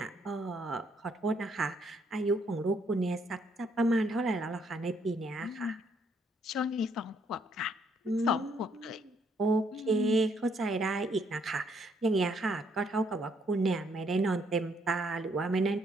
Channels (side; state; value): both; normal; correlation 0.70